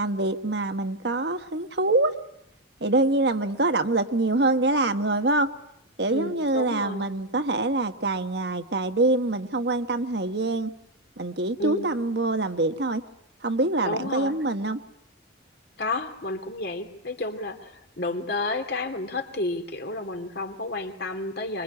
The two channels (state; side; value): normal; both; correlation 0.03